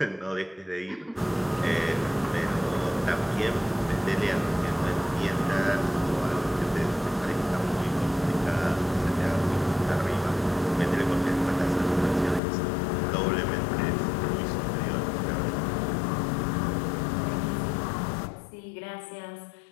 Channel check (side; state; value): right; drops out; at 12.4 s